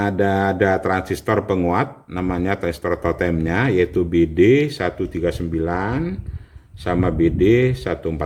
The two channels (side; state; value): both; identical; correlation 1.00